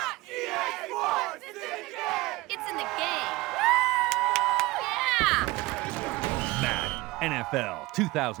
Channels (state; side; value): quieter; left; 21.0 dB